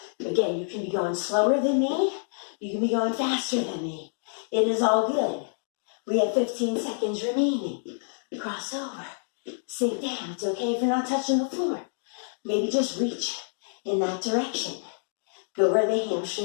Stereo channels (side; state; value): right; silent; digital silence